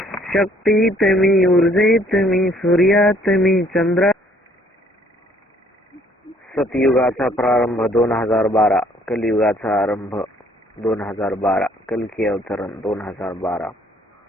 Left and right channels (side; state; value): both; normal; correlation 0.62